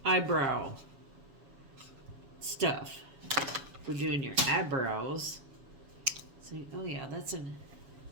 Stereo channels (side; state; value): left; late; 7.1 ms